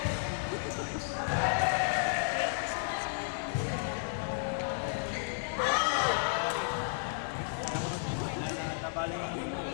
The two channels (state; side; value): silent; right; digital silence